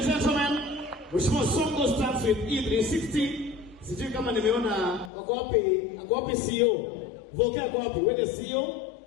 gentlemen, Mheshimiwa Songo starts with E360. Sijui kama nimeona wako wapi CEO? Voke ako wapi? Wewe CEO?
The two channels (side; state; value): right; drops out; at 5.1 s